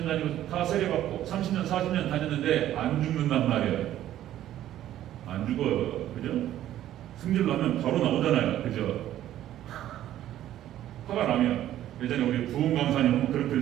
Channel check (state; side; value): quieter; left; 12.6 dB